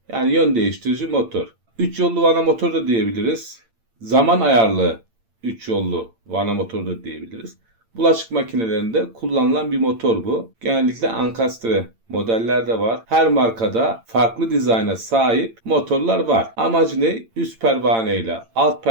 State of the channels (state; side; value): late; left; 8.8 ms